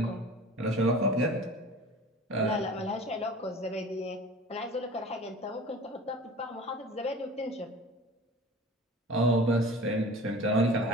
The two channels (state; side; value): normal; both; correlation 0.40